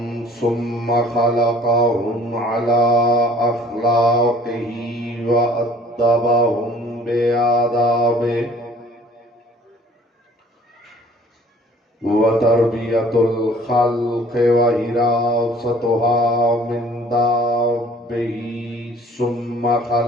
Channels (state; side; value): normal; both; correlation 0.53